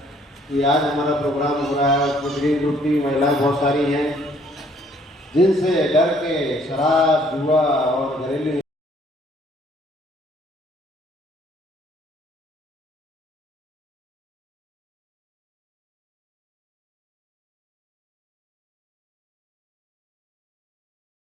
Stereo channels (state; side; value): normal; both; correlation 0.62